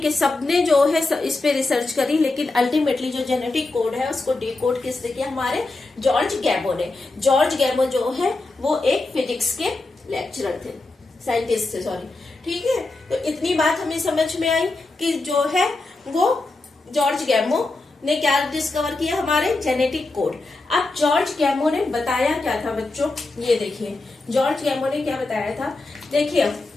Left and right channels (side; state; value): right; quieter; 3.2 dB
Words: के सबने जो है इस पे रिसर्च करी, लेकिन अल्टीमेटली जो जेनेटिक कोड है उसको डिकोड किसने किया, हमारे जॉर्ज गैमो ने। जॉर्ज गैमो जो है वो एक फिजिक्स के लेक्चरर थे, साइंटिस्ट थे, सॉरी, ठीक है। तो इतनी बात हमें समझ में आई कि जो है वो जॉर्ज गैमो ने क्या डिस्कवर किया, हमारे जेनेटिक कोड। अब जॉर्ज गैमो ने बताया क्या था बच्चों, ये देखिए जॉर्ज गैमो ने क्या बताया था। देखिए